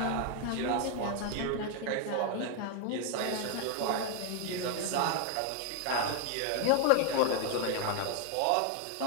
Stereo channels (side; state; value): both; different; correlation 0.00